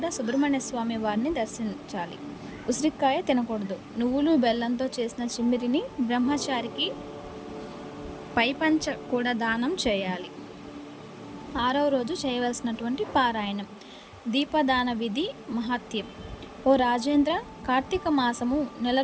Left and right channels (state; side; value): identical; both; correlation 1.00